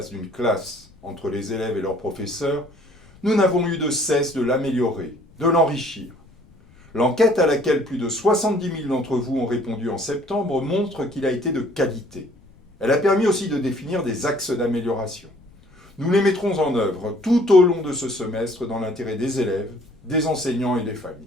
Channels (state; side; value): noise; left; rumble, 27 dB below the sound